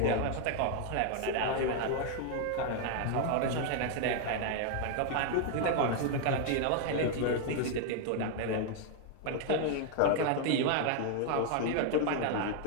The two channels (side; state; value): both; different; correlation 0.00